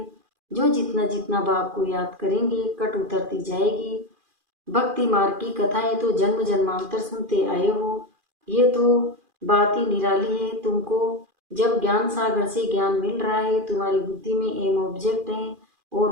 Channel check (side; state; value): left; late; 2.4 ms